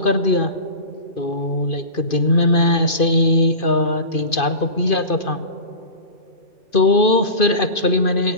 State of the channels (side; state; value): right; late; 2.5 ms